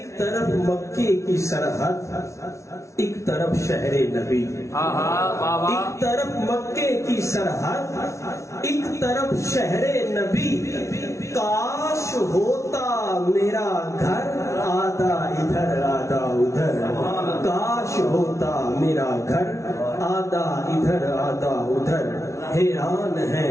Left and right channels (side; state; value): right; late; 0.14 ms